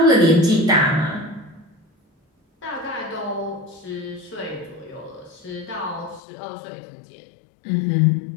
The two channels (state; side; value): drops out; right; at 6.2 s